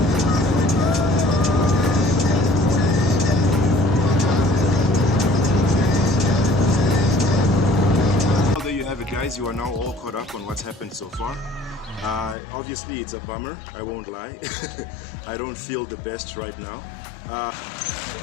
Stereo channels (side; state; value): right; drops out; at 12.4 s